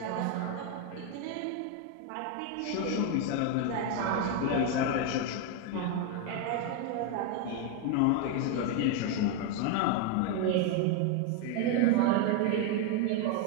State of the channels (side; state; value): both; different; correlation 0.01